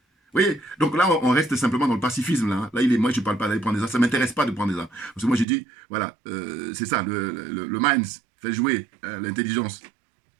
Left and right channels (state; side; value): drops out; left; at 5.5 s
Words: Vous voyez? Donc là, on reste simplement dans le pacifisme. Là, hein. Là moi, je ne parle pas d'aller prendre des armes. Ça ne m'intéresse pas de prendre des armes. Parce que moi, j'ai dit, voilà, c'est ça, le mind fait jouer l'intelligence.